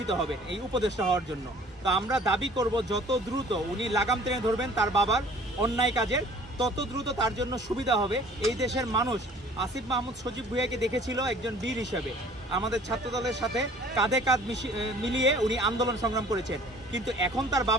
হবেন এই উপদেষ্টা হওয়ার জন্য। তো আমরা দাবি করব যত দ্রুত উনি লাগাম টেনে ধরবেন তার বাবার অন্যায় কাজের, তত দ্রুত তার জন্য সুবিধা হবে। এই দেশের মানুষ আসিফ মাহমুদ সজীব ভুঁইয়াকে দেখেছিল একজন বীর হিসেবে, আমাদের ছাত্রদলের সাথে কাঁধে কাঁধ মিলিয়ে উনি আন্দোলন সংগ্রাম করেছেন। কিন্তু এখন তার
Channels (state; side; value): normal; both; correlation 0.51